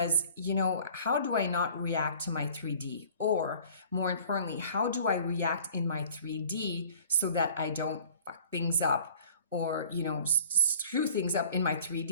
how do I not react to my 3D? Or more importantly, how do I react in my 3D so that I don't fuck things up or, screw things up in my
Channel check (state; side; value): inverted; both; correlation -0.50